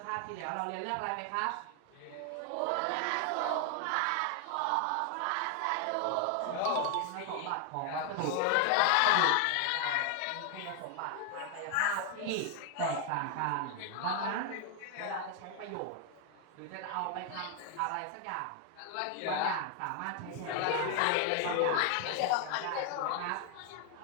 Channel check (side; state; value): both; different; correlation 0.00